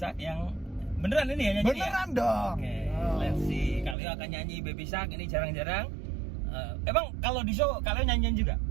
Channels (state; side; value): drops out; left; at 4.0 s